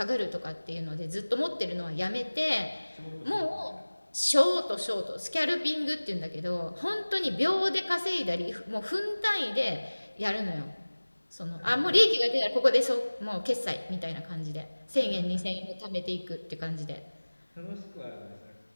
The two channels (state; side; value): inverted; both; correlation -1.00